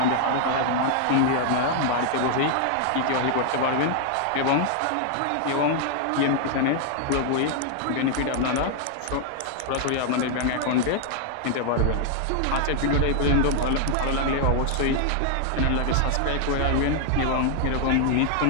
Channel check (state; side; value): different; both; correlation 0.00